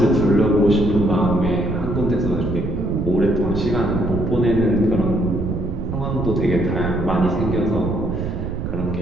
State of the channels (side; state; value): right; noise; rumble, 4 dB below the sound